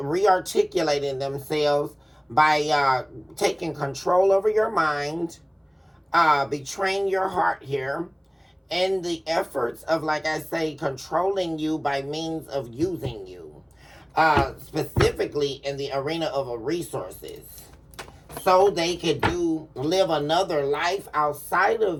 themselves by taking control over your mind, betraying your heart here, and the efforts of, like I say, controlling you by means of using you, specifically in the arena of resources, so they could live another life outside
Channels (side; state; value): both; identical; correlation 1.00